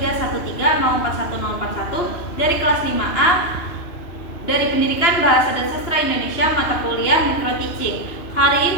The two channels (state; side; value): late; right; 2.9 ms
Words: dari kelas 5A dari Pendidikan Bahasa dan Sastra Indonesia mata kuliah Micro Teaching.